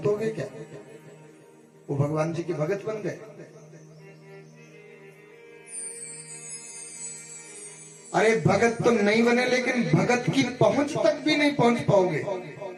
हो गए क्या? वो भगवान जी के भगत बन गए। अरे भगत तो नहीं बने, लेकिन भगत की पहुंच तक भी नहीं पहुंच पाओगे।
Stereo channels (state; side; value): identical; both; correlation 1.00